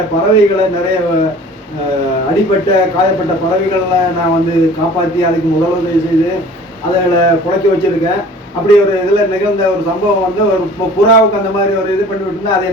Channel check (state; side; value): normal; both; correlation 0.47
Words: பறவைகளை, நிறைய அடிப்பட்ட காயப்பட்ட பறவைகளை நான் வந்து காப்பாற்றி அதுக்கு முதலுதவி செய்து அதில் புழைக்க வச்சிருக்கேன். அப்படி ஒரு இதில் நிகழ்ந்த ஒரு சம்பவம் வந்து ஒரு புறாவுக்கு அந்த மாதிரி ஒரு இது பண்ணி விட்டுருந்தா அது